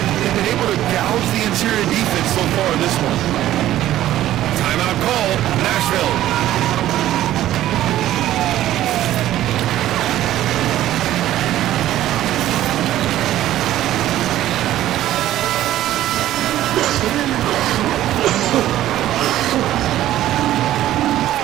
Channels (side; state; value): left; quieter; 13.5 dB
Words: They've been able to gouge the interior defense so far in this one. Timeout call, Nashville.